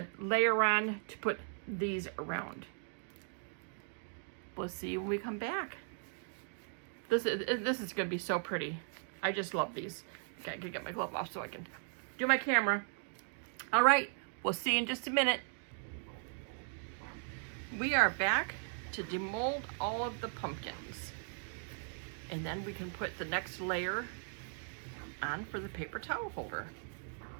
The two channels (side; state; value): left; silent; 53 dB below the other